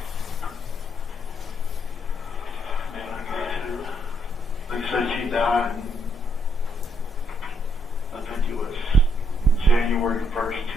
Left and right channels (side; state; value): both; normal; correlation 0.73